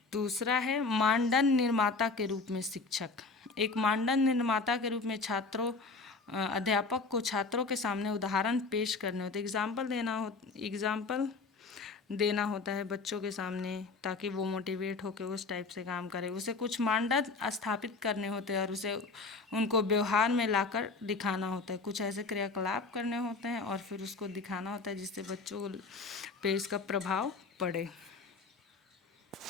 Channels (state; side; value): quieter; right; 4.1 dB